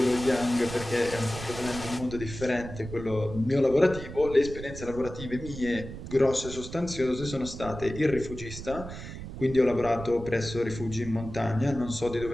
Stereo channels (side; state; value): right; noise; rumble, 11 dB below the sound